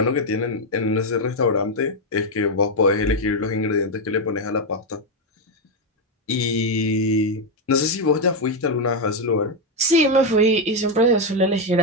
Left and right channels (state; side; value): normal; both; correlation 0.04